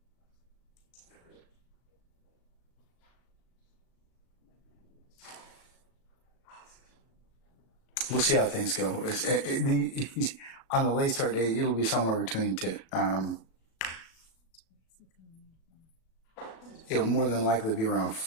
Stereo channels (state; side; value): late; right; 36 ms